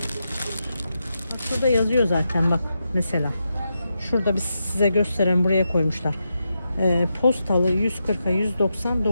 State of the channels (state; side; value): inverted; both; correlation -0.86